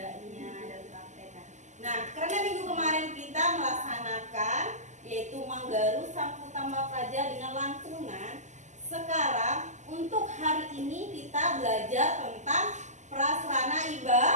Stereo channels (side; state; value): left; late; 0.34 ms